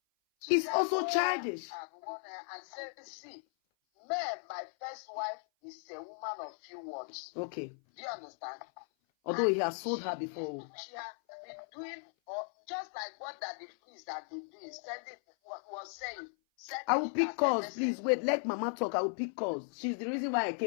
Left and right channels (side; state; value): right; silent; 54 dB below the other